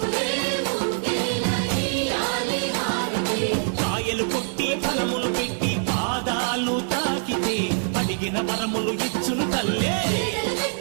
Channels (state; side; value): silent; left; digital silence